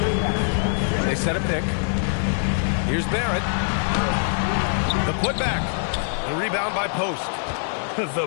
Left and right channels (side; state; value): right; silent; 59 dB below the other